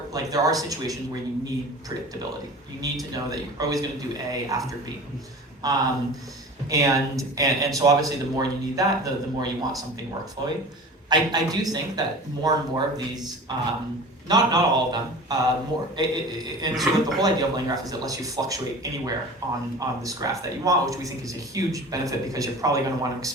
there are situations where you need predictability. You need to know that you're always going to do A after B. And so obviously the more you need that, the more you want something workflowy. I do think that more and more of these, not all of them, and so the whole idea of LangGraph is it lets you fluctuate anywhere on this graph that you want, which we think is a huge benefit, because you're probably going to want to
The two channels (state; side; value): normal; both; correlation 0.38